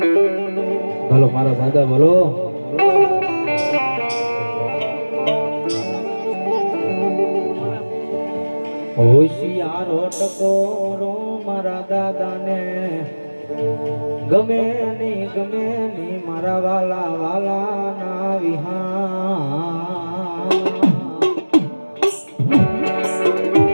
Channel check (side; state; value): both; inverted; correlation -1.00